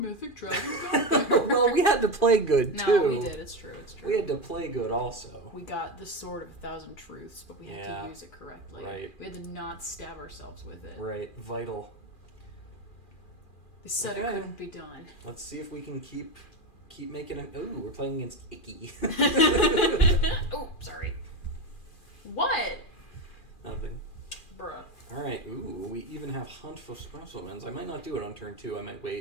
dragon got there. Well, we had to play good, too. No, we did. It's true. We had to play good also. We got the Sword of 1,000 Truths, but we had to use it correctly. Right. We had to not stab ourselves with it. Right. Vital. They said it couldn't be done. Let's see if we can keep making it. Ooh, we're playing against Icky. Oh, sorry. What? Nothing. Bruh. Alright, ooh, we even have Hunt for Specimens. I might not do it on turn 2. I might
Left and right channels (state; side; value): late; right; 2.4 ms